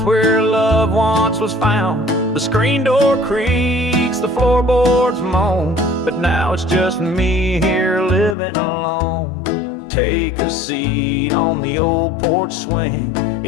where love once was found. The screen door creaks, the floorboards moan, but now it's just me here living alone. Take a seat on the old porch swing.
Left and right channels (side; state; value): right; drops out; at 8.3 s